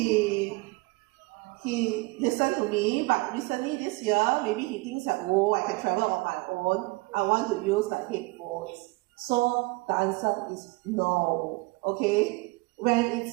listened to me, but recently this year, maybe he thinks that, oh, I can travel on my own. I want to use the headphones. So the answer is no. Okay? When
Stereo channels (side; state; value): left; quieter; 24.5 dB